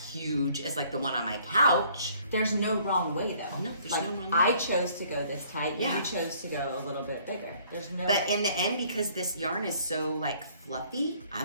huge as like the one on my couch. There's no wrong way though. No, there's no wrong way. I chose to go this tight. Yeah. You chose to go a little bit bigger. There's no. But in the end, because this yarn is so like fluffy, I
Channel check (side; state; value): both; inverted; correlation -0.59